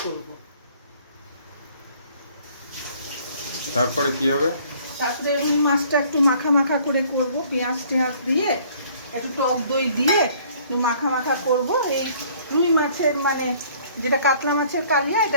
করব। তারপরে কি হবে? তারপরে রুই মাছটা একটু মাখা মাখা করে করব, পেঁয়াজ টেঁয়াজ দিয়ে, একটু টক দই দিয়ে একটু মাখা মাখা করব। এই রুই মাছের মানে যেটা কাতলা মাছের কালিয়া,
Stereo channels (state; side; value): inverted; both; correlation -0.57